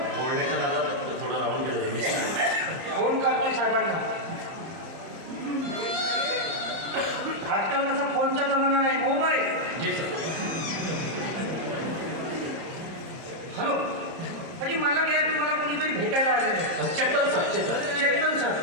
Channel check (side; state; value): left; late; 31 ms